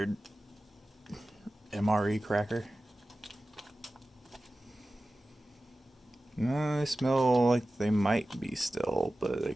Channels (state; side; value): normal; both; correlation 0.95